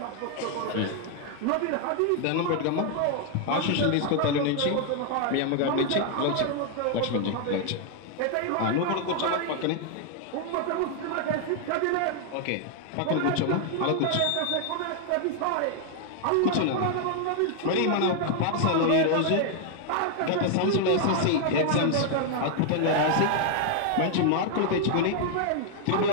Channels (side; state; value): both; different; correlation 0.00